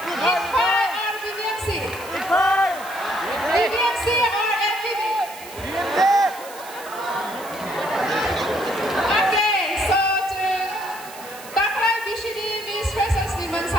or BBMC BBMC or MBB Okay so taklay BCD Miss Freshers ni man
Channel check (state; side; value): noise; right; hiss, 16 dB below the sound